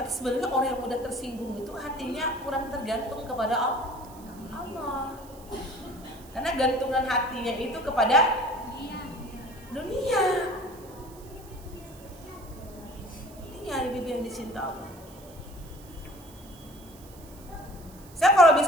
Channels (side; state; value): right; noise; hiss, 22 dB below the sound